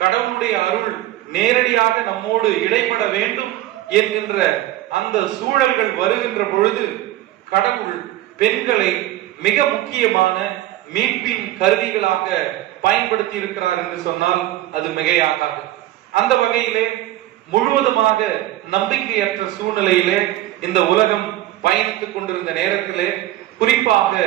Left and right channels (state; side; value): quieter; left; 14.9 dB